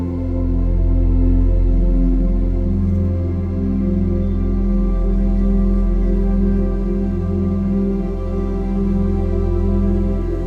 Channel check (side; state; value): both; identical; correlation 1.00